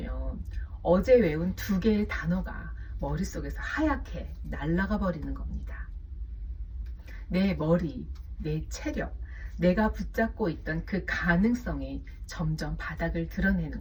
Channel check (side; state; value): both; identical; correlation 1.00